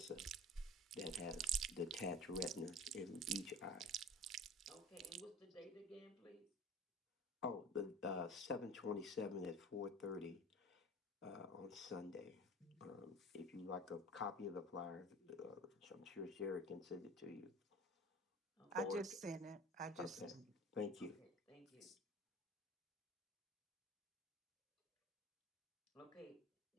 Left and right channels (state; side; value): normal; both; correlation 0.40